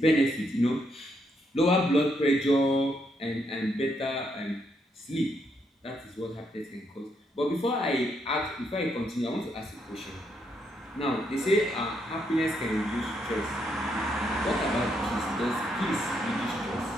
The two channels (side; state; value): both; normal; correlation 0.76